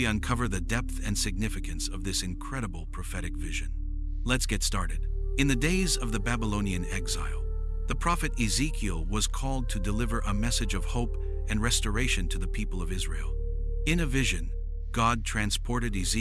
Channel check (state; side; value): identical; both; correlation 1.00